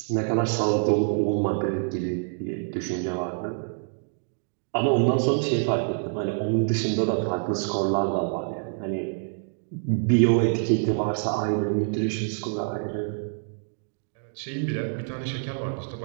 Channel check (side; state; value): left; silent; digital silence